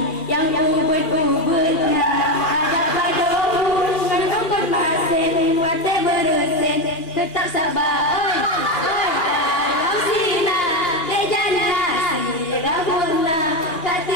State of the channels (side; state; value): right; late; 2.4 ms